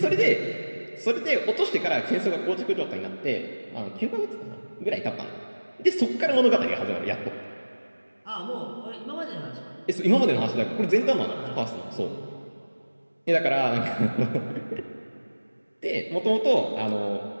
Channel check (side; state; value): both; inverted; correlation -1.00